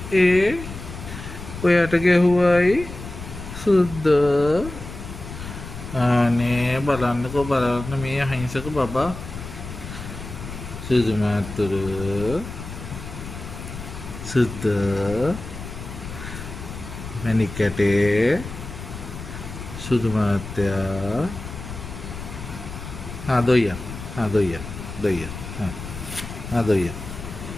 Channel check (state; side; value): noise; left; rumble, 10 dB below the sound